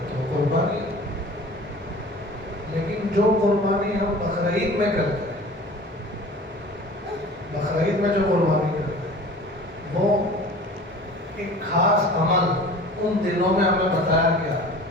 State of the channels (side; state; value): both; normal; correlation 0.42